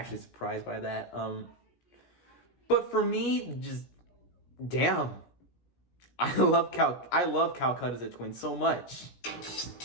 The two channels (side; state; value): right; late; 17 ms